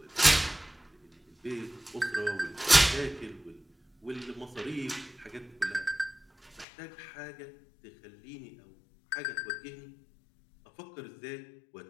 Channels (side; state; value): right; drops out; at 6.7 s